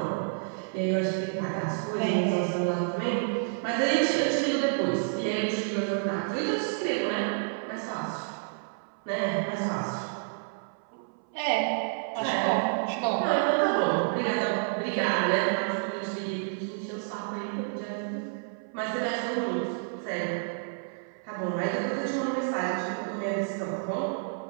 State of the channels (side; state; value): left; silent; 58 dB below the other